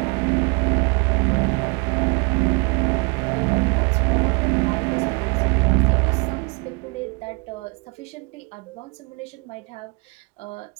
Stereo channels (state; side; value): quieter; left; 31.3 dB